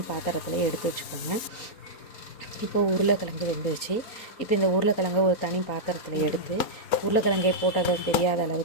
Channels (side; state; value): right; late; 4.3 ms